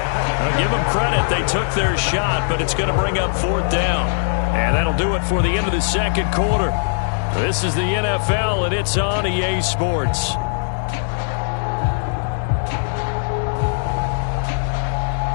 give them credit. They took their shot, but it's going to bring up 4th down. And that'll do it for the end of the second quarter. This is the NFL, and it's on EA Sports.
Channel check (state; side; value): silent; right; digital silence